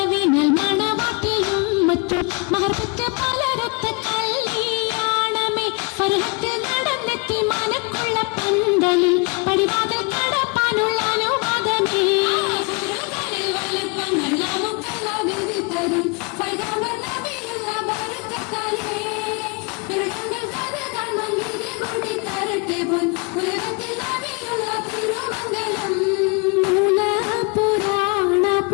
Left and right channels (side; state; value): right; quieter; 31.2 dB